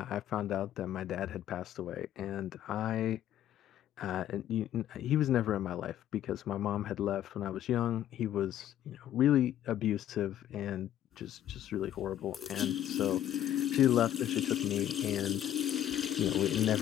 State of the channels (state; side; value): quieter; right; 11.5 dB